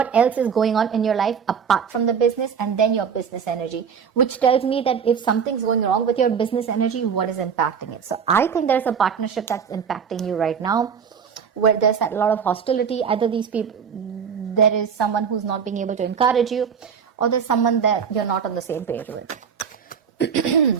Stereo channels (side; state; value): left; quieter; 6.9 dB